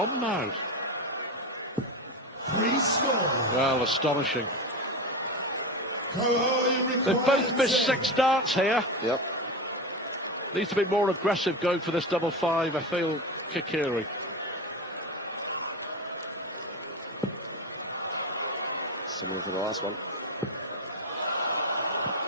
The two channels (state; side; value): normal; both; correlation 0.20